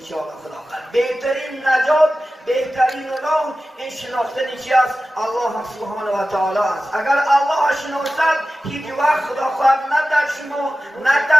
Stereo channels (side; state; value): both; normal; correlation 0.94